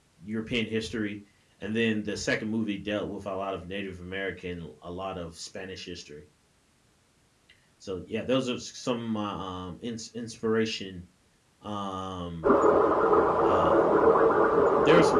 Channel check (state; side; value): identical; both; correlation 1.00